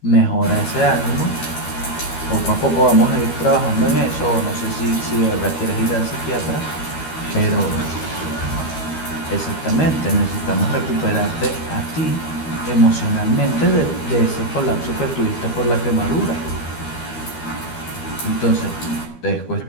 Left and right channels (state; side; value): late; right; 13 ms